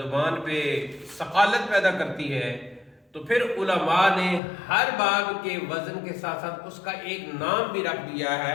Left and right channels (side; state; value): right; drops out; at 4.4 s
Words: پہ ثقالت پیدا کرتی ہے۔ تو پھر علماء نے ہر باب کے وزن کے ساتھ ساتھ اس کا ایک نام بھی رکھ دیا